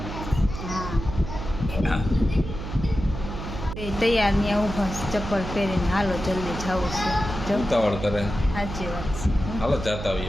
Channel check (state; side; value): noise; right; hum, 8 dB below the sound